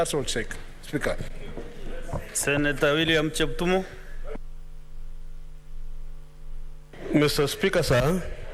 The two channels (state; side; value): identical; both; correlation 1.00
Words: all, Speaker. Senator William Cheptumo. Mr. Speaker, sir,